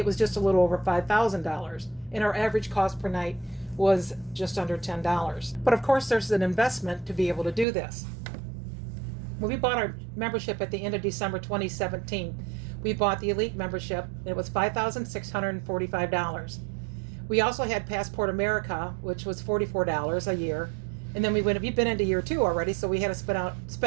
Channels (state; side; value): drops out; left; at 7.7 s